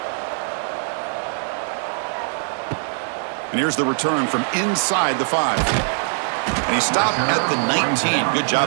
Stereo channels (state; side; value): silent; left; 64 dB below the other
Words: And here's the return from inside the 5. And he stopped at the 19. Good